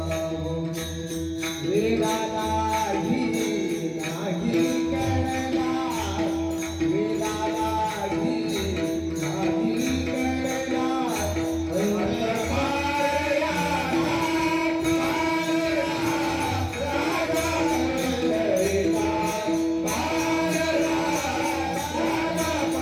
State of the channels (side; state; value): both; identical; correlation 1.00